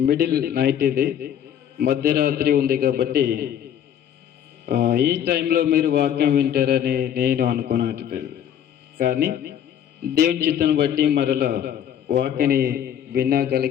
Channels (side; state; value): right; quieter; 9.6 dB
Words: మిడిల్ నైట్ ఇది, మధ్యరాత్రి ఉంది కాబట్టి ఈ టైంలో మీరు వాక్యం వింటారని నేను అనుకోనట్లేదు. కానీ దేవుని చిత్తాన్ని బట్టి మరలా వాక్యని